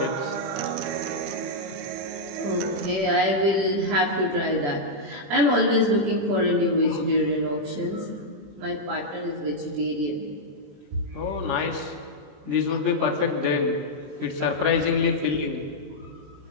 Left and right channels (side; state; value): left; late; 21 ms